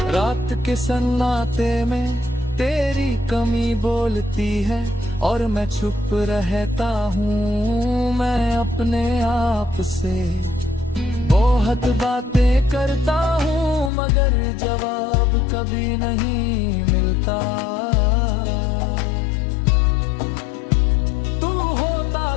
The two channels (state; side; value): drops out; right; at 13.9 s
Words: रात के सन्नाटे में तेरी कमी बोलती है और मैं चुप रहता हूँ। मैं अपने आप से बहुत बातें करता हूँ, मगर जवाब कभी नहीं मिलता। तू होता